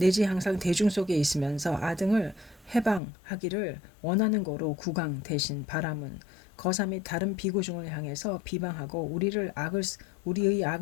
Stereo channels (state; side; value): drops out; right; at 3.0 s